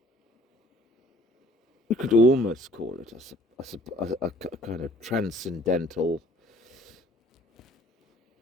we could almost call it a kind of transcendental.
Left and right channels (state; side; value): normal; both; correlation 0.57